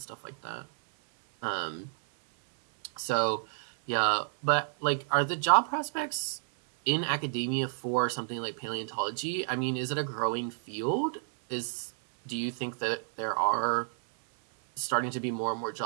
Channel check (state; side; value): silent; left; 58 dB below the other